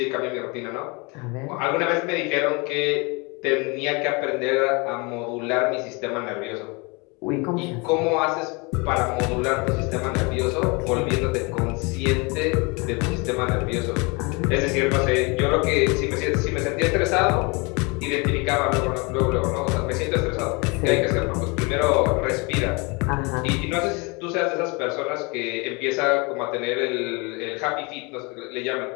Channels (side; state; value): right; quieter; 28.9 dB